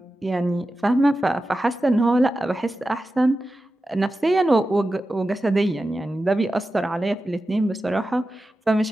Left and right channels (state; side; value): normal; both; correlation 0.93